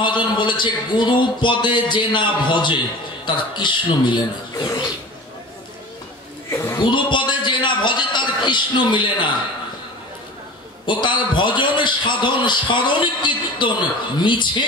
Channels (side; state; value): both; normal; correlation 0.37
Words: বলেছে, গুরু পদে যে না ভজে তার কৃষ্ণ মিলে না। গুরু পদে যে না ভজে তার কৃষ্ণ মিলে না। ও তার ভজন সাধন স্মরণ কীর্তন মিছে